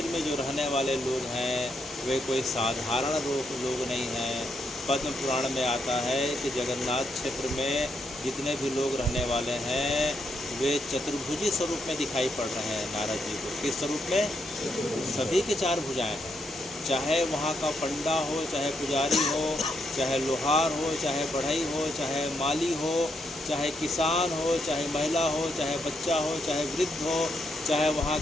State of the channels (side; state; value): both; normal; correlation 0.79